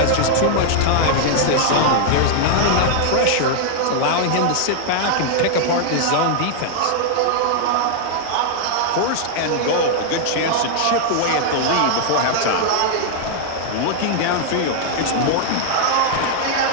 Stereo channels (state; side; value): different; both; correlation -0.01